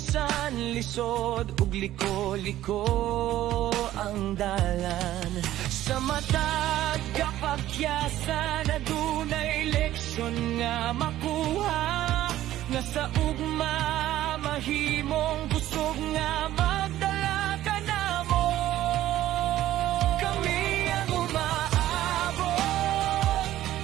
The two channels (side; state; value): left; quieter; 13.8 dB